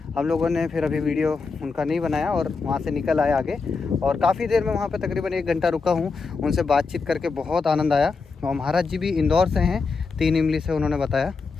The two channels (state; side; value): quieter; right; 4.6 dB